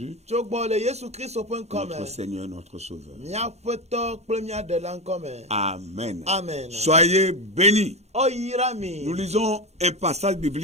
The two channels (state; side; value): late; left; 0.31 ms